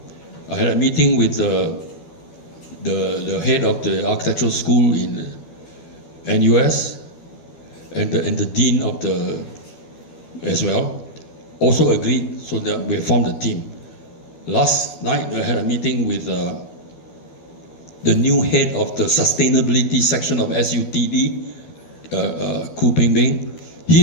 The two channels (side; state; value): right; late; 12 ms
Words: I had a meeting with the head of the architectural school in NUS and the dean of the as well, also agreed, so that we formed a team. Last night I had a meeting with the new head of the sustainability section of SUTD, Khoo Peng. He